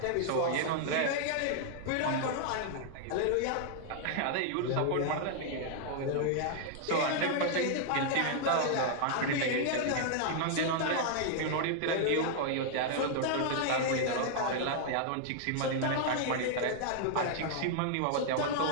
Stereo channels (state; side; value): different; both; correlation 0.00